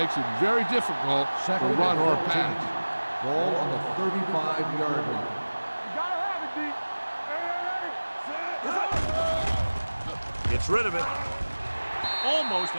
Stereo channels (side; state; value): both; inverted; correlation -1.00